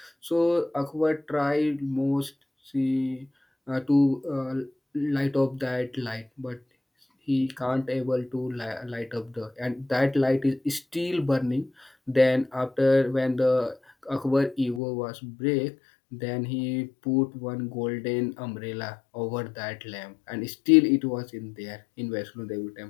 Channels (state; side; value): drops out; right; at 14.8 s